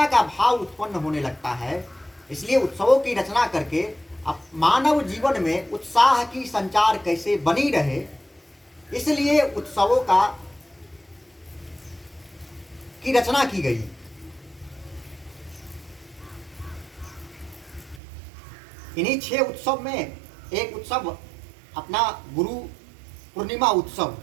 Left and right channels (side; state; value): left; drops out; at 18.0 s